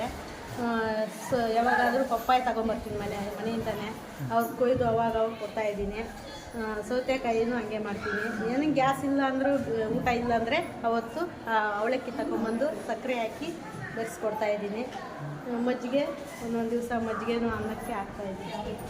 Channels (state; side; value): identical; both; correlation 1.00